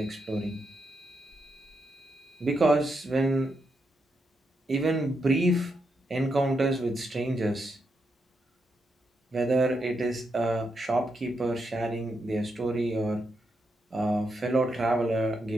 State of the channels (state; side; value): normal; both; correlation 0.82